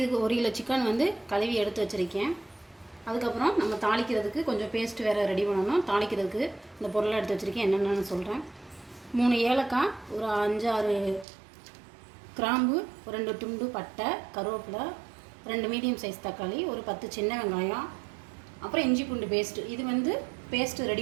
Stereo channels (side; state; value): left; drops out; at 11.2 s